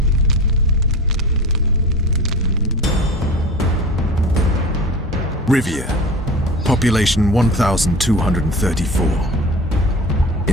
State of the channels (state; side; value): normal; both; correlation 0.35